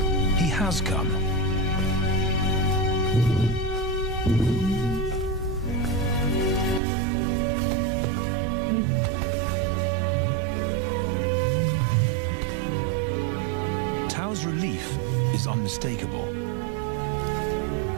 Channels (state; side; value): drops out; left; at 6.8 s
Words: He has come. Tao's relief is unmistakable.